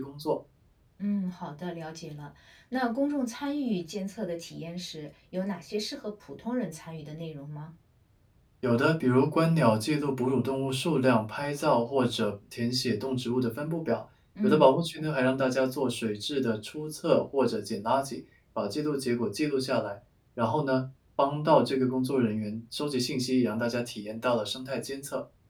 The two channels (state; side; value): identical; both; correlation 1.00